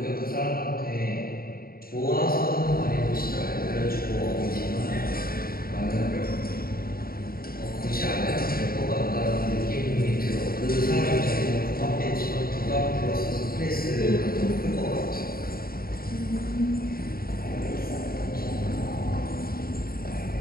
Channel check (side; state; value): right; late; 0.43 ms